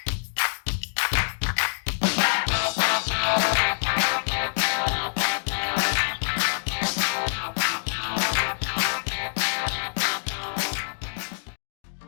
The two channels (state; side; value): silent; right; digital silence